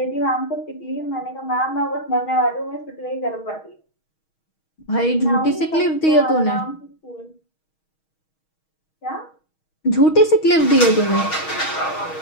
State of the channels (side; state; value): right; late; 6.3 ms